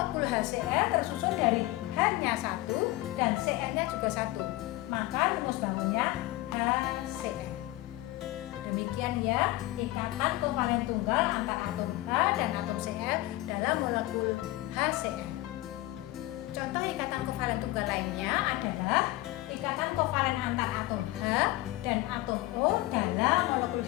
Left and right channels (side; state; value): right; quieter; 18.2 dB